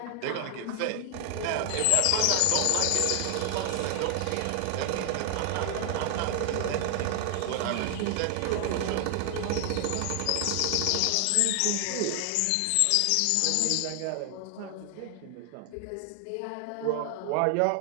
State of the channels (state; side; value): different; both; correlation 0.00